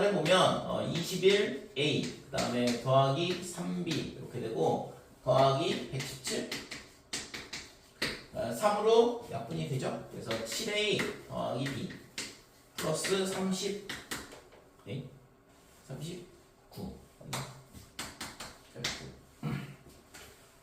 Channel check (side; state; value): both; identical; correlation 1.00